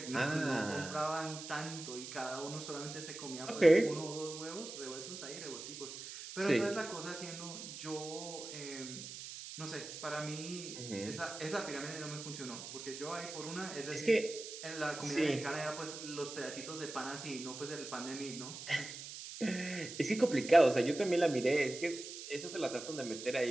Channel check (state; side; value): noise; right; hiss, 10 dB below the sound